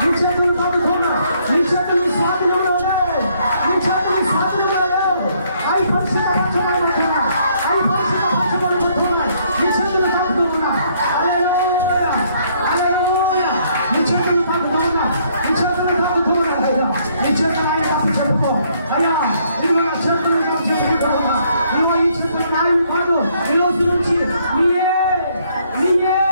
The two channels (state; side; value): inverted; both; correlation -0.68